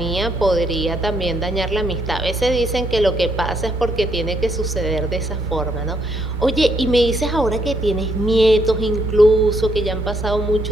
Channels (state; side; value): normal; both; correlation 0.73